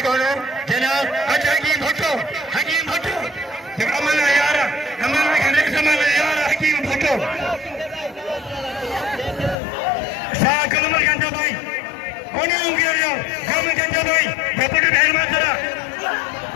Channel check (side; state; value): right; drops out; at 9.6 s